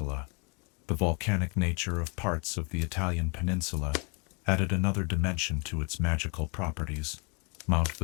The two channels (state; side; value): quieter; right; 33.5 dB